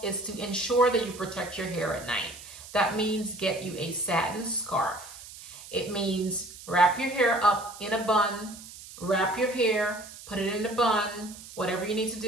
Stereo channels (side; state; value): right; noise; hiss, 16 dB below the sound